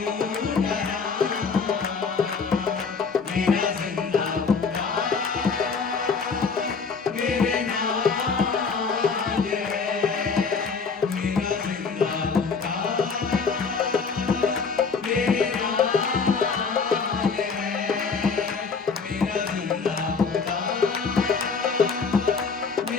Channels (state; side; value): quieter; right; 5.2 dB